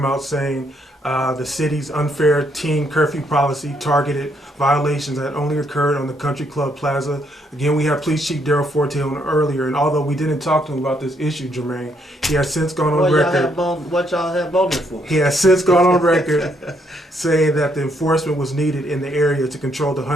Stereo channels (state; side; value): normal; both; correlation 0.73